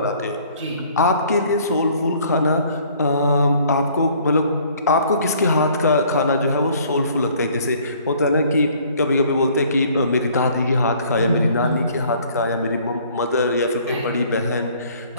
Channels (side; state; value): both; inverted; correlation -0.57